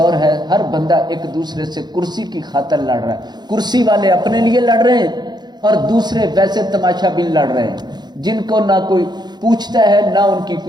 ہے، ہر بندہ ایک دوسرے سے کرسی کی خاطر لڑ رہا ہے۔ کرسی والے اپنے لیے لڑ رہے ہیں اور دوسرے ویسے تماشا بین لڑ رہے ہیں، جن کو نہ کوئی پوچھتا ہے نہ ان کی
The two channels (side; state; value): left; late; 0.21 ms